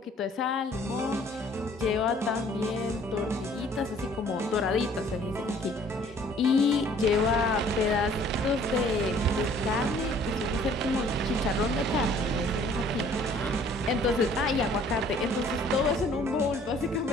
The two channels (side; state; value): both; normal; correlation 0.56